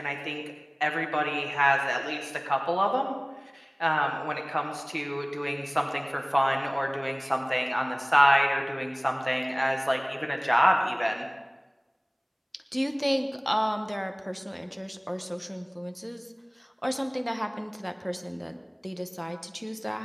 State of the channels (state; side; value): identical; both; correlation 1.00